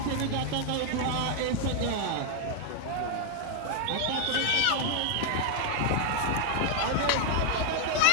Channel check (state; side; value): different; both; correlation 0.00